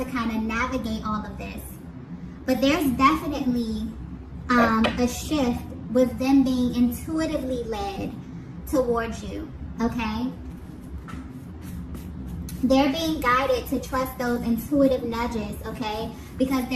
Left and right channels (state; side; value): identical; both; correlation 1.00